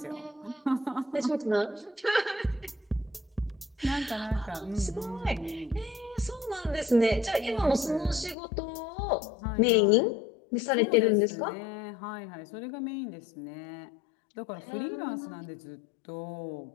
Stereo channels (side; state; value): right; drops out; at 8.3 s